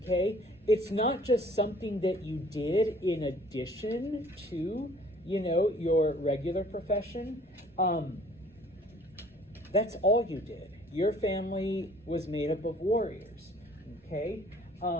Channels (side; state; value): both; normal; correlation 0.55